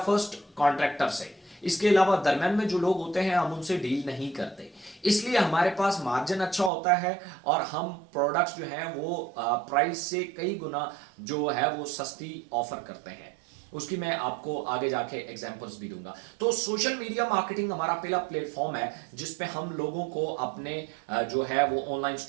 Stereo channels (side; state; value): left; drops out; at 6.7 s